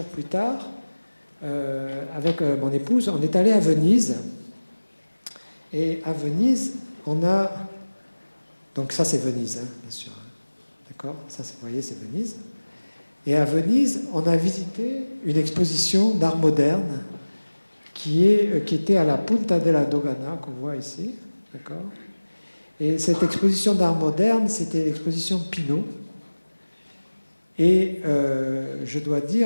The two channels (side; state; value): both; inverted; correlation -1.00